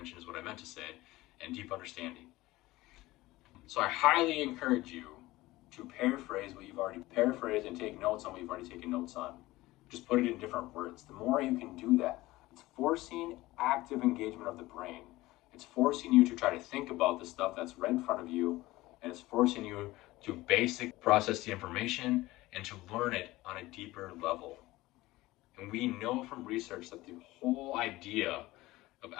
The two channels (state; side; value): quieter; right; 18.6 dB